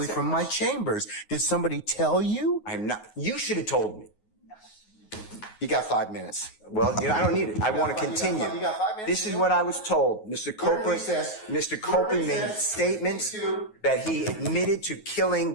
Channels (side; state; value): right; late; 9.5 ms